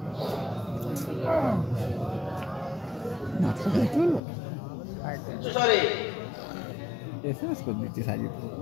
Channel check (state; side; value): drops out; right; at 4.2 s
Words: সরি এসএমএস করে দিচ্ছি সাজিদ